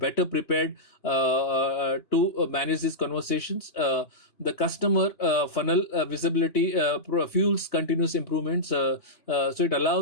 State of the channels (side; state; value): right; late; 2.9 ms